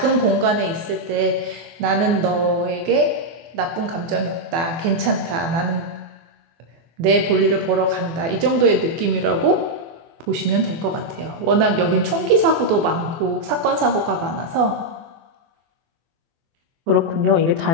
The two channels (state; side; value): late; left; 24 ms